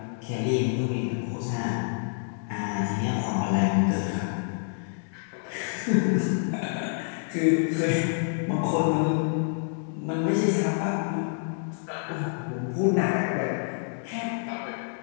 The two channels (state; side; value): silent; right; 60 dB below the other